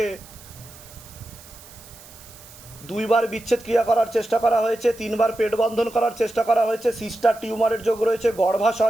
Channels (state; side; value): noise; right; hiss, 20 dB below the sound